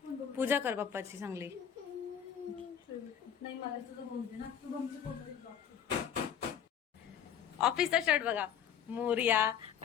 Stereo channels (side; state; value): right; quieter; 8.8 dB